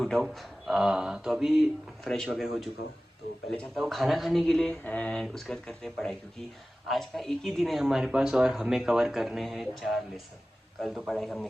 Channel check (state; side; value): normal; both; correlation 0.97